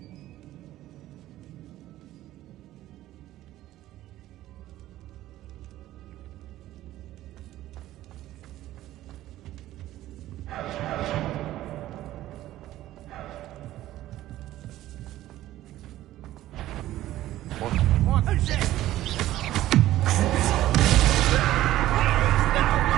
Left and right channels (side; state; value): left; quieter; 14.6 dB